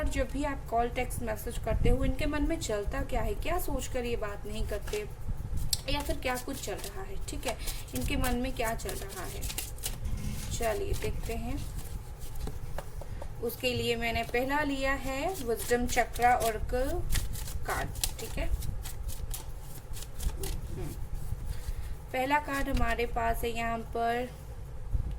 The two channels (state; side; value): identical; both; correlation 1.00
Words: जब भी आप कॉल टेक्स्ट मैसेज करते हो, इनके मन में चलता क्या है, क्या सोचकर ये बात नहीं करते, या फिर क्या कुछ चल रहा है। ठीक है, इनके मन में क्या चल रहा है, चलिए देखते हैं। उसके लिए मैंने पहला लिया है विजडम चक्रा ऑरेकल कार्ड। ठीक है, पहला कार्ड हमारे पास है यहाँ पर